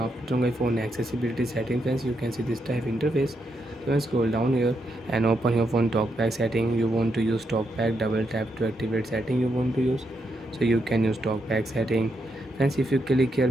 my phone accessibility setting friends, you can see this type interface. So friends, scroll down here and open your phone talkback setting. You want to use talkback, double tap to activate setting you want to use. So you can use talkback setting. Friends, if you click here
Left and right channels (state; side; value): normal; both; correlation 0.81